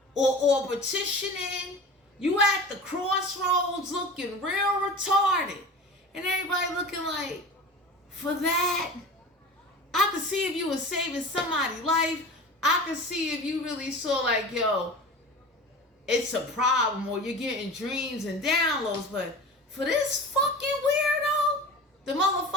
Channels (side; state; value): both; normal; correlation 0.35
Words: Or petitioning. You at the crossroads looking real retarded. And everybody looking like, for that? I could see if you were saving somebody's life. I could see if you really saw like, yo, it's a problem, or you're getting dreams and downloads. But for this fucking weirdo, the